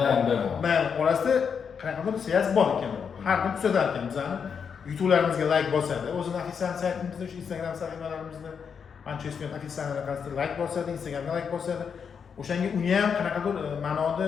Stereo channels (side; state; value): right; quieter; 6.7 dB